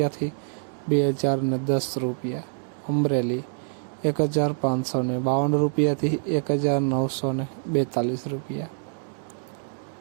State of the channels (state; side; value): silent; left; digital silence